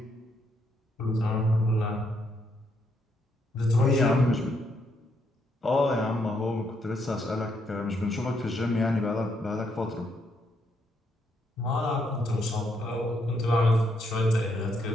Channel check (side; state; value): both; normal; correlation 0.75